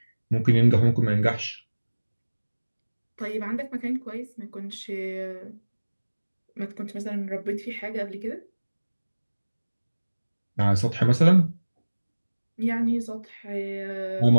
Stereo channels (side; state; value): both; inverted; correlation -1.00